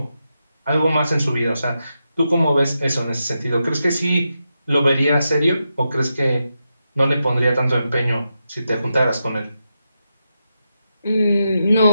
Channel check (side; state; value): both; inverted; correlation -0.87